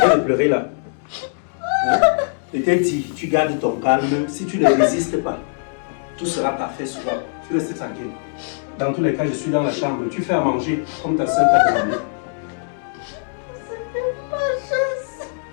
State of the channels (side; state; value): right; silent; 65 dB below the other